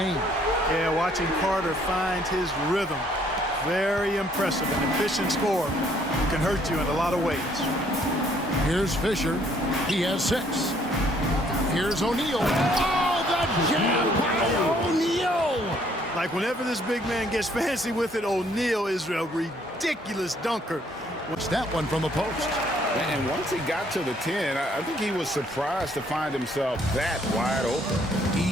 Yeah, watching Carter find his rhythm. Very impressive. An efficient scorer can hurt you in a lot of ways. Here's Fisher. He has 6. Here's O'Neal. Oh, the jam by O'Neal! Like whenever this big man gets fancy with it, O'Neal is a ridiculous dunker. What's that one from the post? And once he got to the 10, I think he was surprised to find himself that wide open.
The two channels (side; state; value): both; normal; correlation 0.65